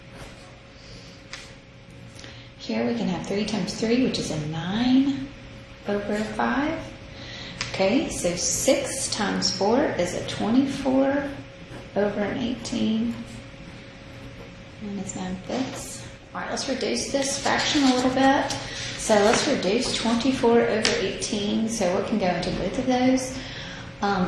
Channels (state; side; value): identical; both; correlation 1.00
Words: Here we can have 3 times 3, which is a 9 over 5. Okay, so 6 times 4 is a 24 over an 18, minus 9/5. All right, let's reduce this fraction a little bit. So let's reduce 24 over 18. So what can go into both of those?